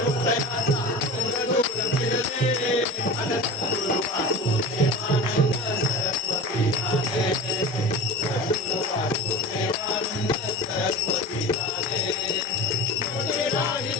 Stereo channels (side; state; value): both; normal; correlation 0.32